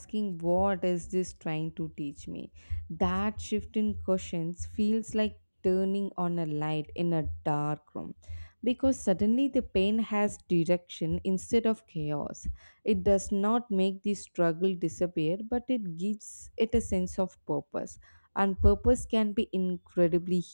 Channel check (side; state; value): both; inverted; correlation -1.00